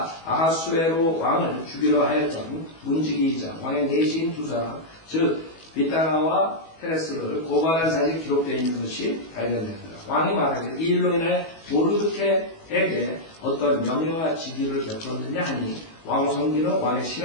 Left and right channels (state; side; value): late; right; 18 ms